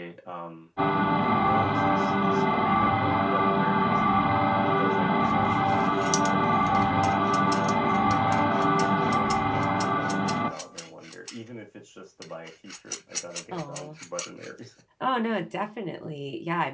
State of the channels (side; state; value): both; identical; correlation 1.00